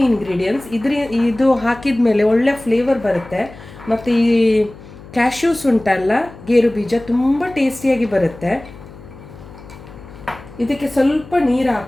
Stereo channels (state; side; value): noise; left; hum, 18 dB below the sound